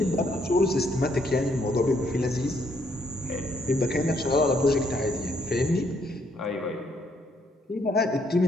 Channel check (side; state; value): both; normal; correlation 0.71